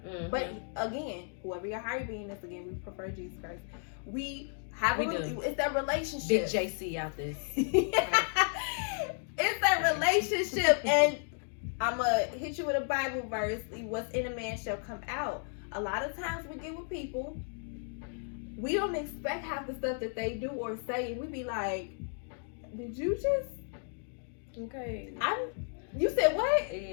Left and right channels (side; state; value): right; silent; 55 dB below the other